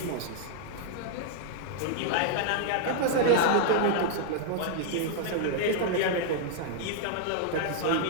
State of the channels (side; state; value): both; different; correlation -0.01